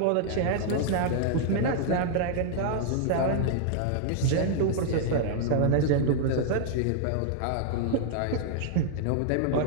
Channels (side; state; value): both; different; correlation -0.01